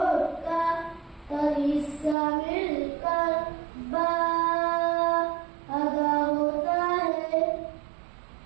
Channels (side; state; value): left; drops out; at 2.1 s